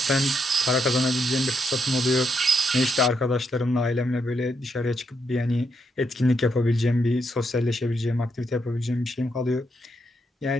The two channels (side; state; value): both; normal; correlation 0.79